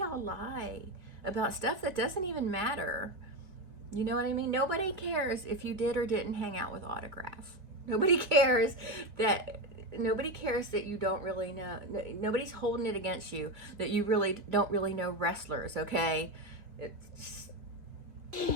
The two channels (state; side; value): late; left; 2.5 ms